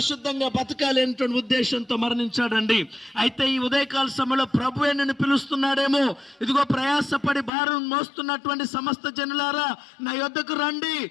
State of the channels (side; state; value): right; drops out; at 7.5 s